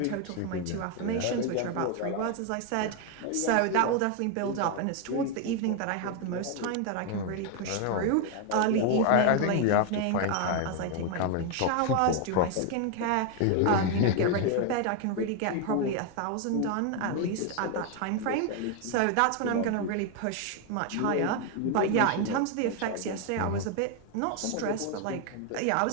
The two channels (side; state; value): both; different; correlation 0.01